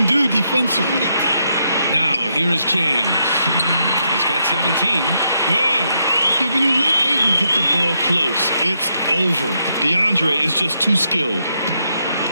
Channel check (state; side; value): inverted; both; correlation -0.79